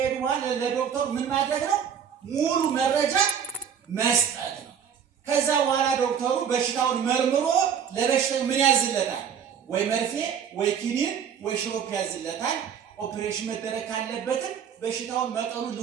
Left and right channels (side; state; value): left; quieter; 8.0 dB